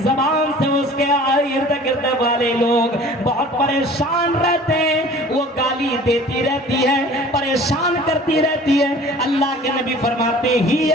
زبان سے اس کے ارد گرد والے لوگ بہت پریشان رہتے ہیں، وہ گالی دیتی رہتی ہے، پریشان کرتی رہتی ہے. اللہ کے نبی فرماتے ہی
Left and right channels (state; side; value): normal; both; correlation 0.46